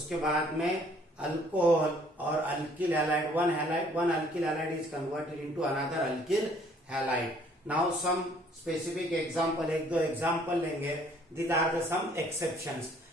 बाद में alcohol और alkyl halide one alkyl halide is converted into another alkyl halide. Now some specific example, एक दो एग्जांपल लेंगे. These are the some exceptions.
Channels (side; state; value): both; normal; correlation 0.60